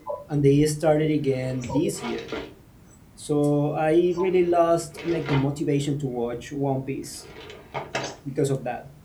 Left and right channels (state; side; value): identical; both; correlation 1.00